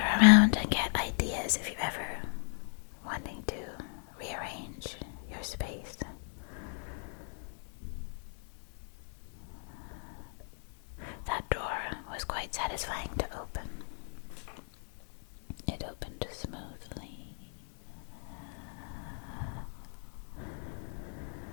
around and get ideas if you're ever wanting to rearrange your space. That door was quite satisfying to open. It opened smoothly.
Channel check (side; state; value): right; silent; 54 dB below the other